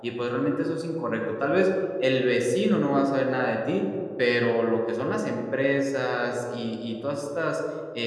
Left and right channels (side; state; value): both; identical; correlation 1.00